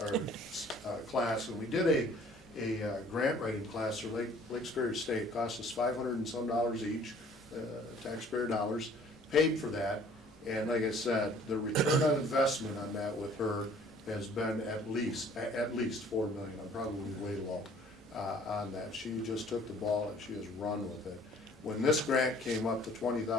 And we did a grant writing class for Lake Superior State. It cost us $500 and some each, taxpayer dollars, paid for that. And like I said, the return on investment on that with her has been at least 4 million. I'm probably way low on that. She just took the ball and she has run with it. When this grant came up to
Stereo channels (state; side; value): normal; both; correlation 0.55